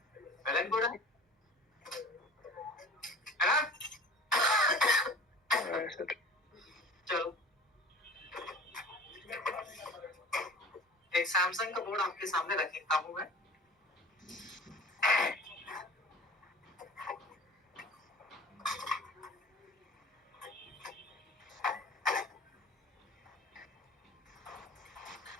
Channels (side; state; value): both; normal; correlation 0.40